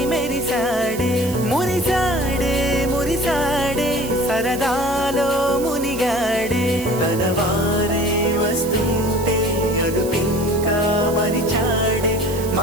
మెరిసాడే మురిసాడే మురిసాడే సరదాలో మునిగాడే తనవారే వస్తుంటే అదుపింకా మరిచాడే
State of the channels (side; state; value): right; noise; hiss, 13 dB below the sound